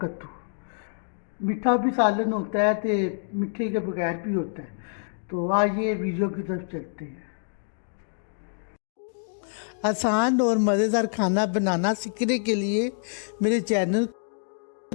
कद्दू। मीठा भी सालन होता है तो मीठे के बगैर भी होता है। तो आइए वीडियो की तरफ चलते हैं। आसान और मज़ेदार खाना बनाना सीखने के लिए मेरे चैनल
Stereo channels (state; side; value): silent; right; digital silence